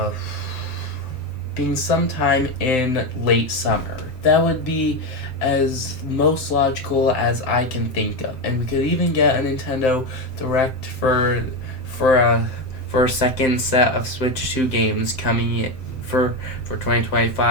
late summer. That would be as most logical as I can think of, and we could even get a Nintendo Direct for a second set of Switch 2 games coming for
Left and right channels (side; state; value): right; late; 7.8 ms